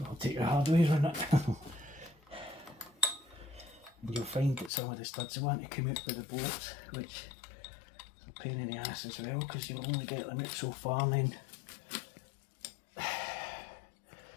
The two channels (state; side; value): drops out; right; at 4.7 s